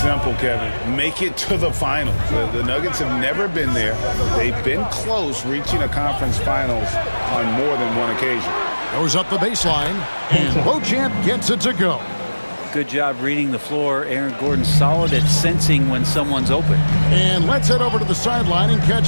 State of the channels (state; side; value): inverted; both; correlation -1.00